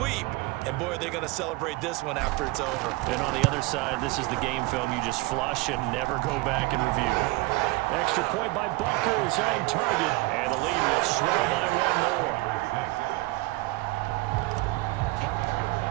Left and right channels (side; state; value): left; quieter; 21.7 dB